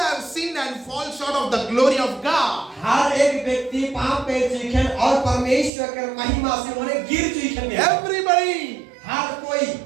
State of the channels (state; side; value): drops out; left; at 5.7 s